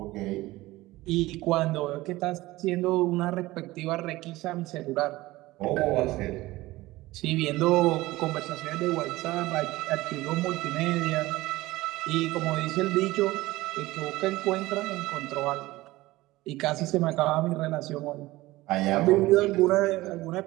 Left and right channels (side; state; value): left; quieter; 18.7 dB